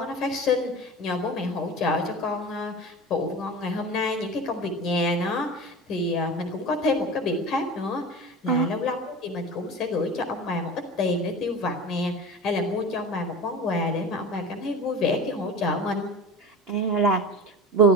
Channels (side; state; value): both; normal; correlation 0.33